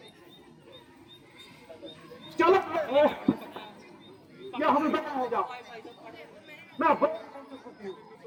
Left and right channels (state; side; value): identical; both; correlation 1.00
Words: चलो या हमें बता हो जाओ। मैं